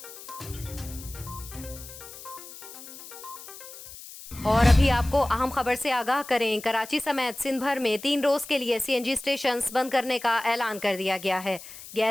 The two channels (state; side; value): noise; left; hiss, 15 dB below the sound